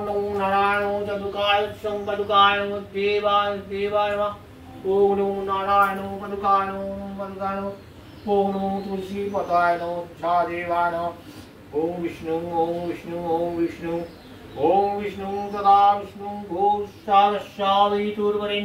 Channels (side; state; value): both; identical; correlation 1.00